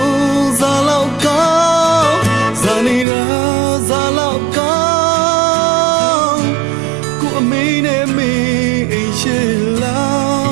ဇာလောက်ကောင်းဇာနေရာဇာလောက်ကောင်းကိုအမေနဲ့မေအိမ်ရှိလာ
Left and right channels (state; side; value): drops out; left; at 3.1 s